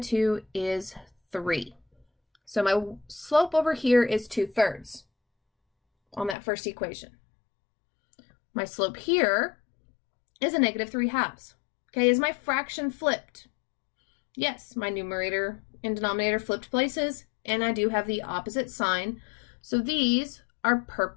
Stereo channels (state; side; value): drops out; right; at 6.4 s